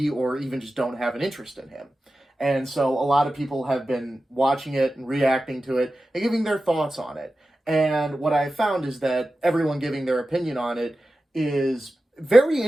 or even just don't have an interest in him. And so a lot of people have been watching it and reacting to it and giving their thoughts on it. And what I found is that everyone giving their opinion on it is very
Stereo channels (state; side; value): normal; both; correlation 0.93